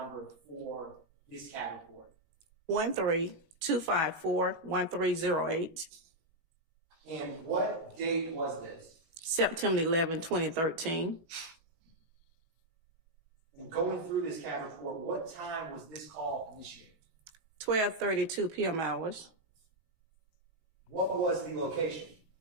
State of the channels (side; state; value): left; late; 18 ms